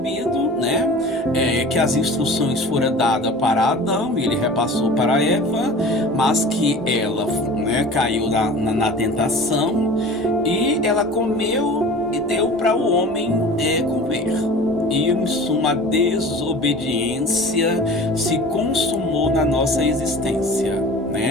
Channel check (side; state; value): both; normal; correlation 0.40